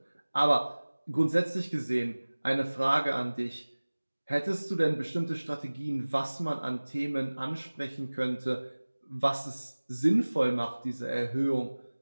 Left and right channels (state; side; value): inverted; both; correlation -1.00